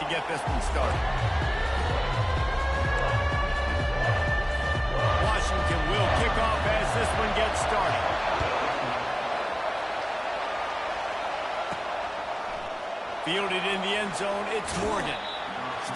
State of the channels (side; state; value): both; identical; correlation 1.00